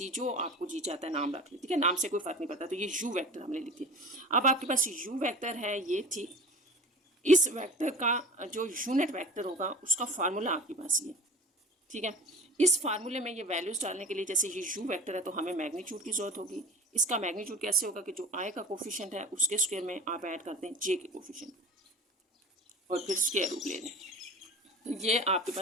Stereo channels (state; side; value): normal; both; correlation 0.37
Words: जो आपको जी चाहता है नाम रख लें, ठीक है, नाम से कोई फर्क नहीं पड़ता। तो ये u वेक्टर हमने लिख दिया। अब आपके पास u वेक्टर है ये, ठीक, इस वेक्टर का जो यूनिट वेक्टर होगा उसका फार्मूला आपके पास ये, ठीक है। इस फार्मूले में ये वैल्यूज डालने के लिए, जैसे ये u वेक्टर है तो हमें मैग्नीट्यूड की जरूरत होगी। इसका मैग्नीट्यूड कैसे होगा कि जो i का कोफिशिएंट है उसके स्क्वायर में आप ऐड करते हैं j के कोफिशिएंट और फिर स्क्वायर रूट ले लें। तो ये आपके